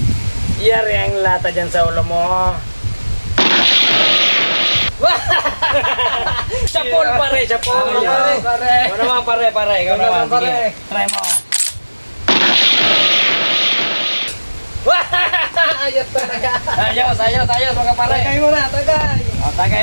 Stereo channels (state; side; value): inverted; both; correlation -1.00